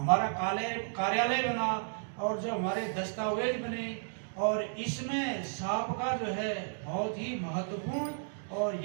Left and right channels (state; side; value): silent; left; digital silence